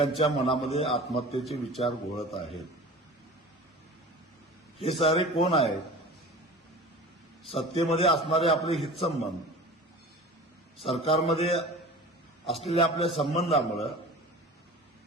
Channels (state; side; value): normal; both; correlation 0.38